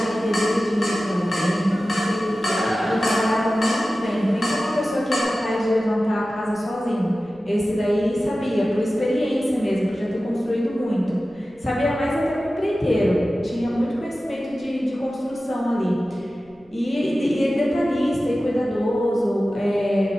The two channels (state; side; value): noise; right; rumble, 29 dB below the sound